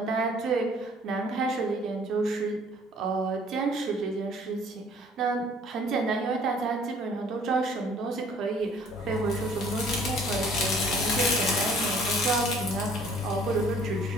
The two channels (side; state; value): both; normal; correlation 0.56